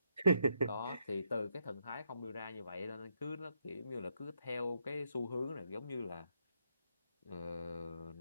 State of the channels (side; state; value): both; inverted; correlation -0.77